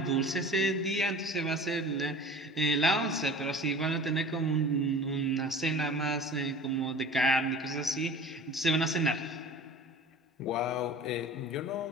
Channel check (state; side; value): normal; both; correlation 0.40